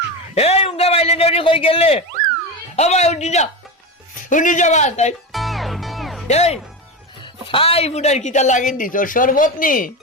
এই উঙ্গা বাইলে নেউনি কই গেলে ও ভাই উঠি যা বা তাই এই ফাই ফুটার কিতা লাগিন দিছ শরবত নি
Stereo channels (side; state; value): both; normal; correlation 0.19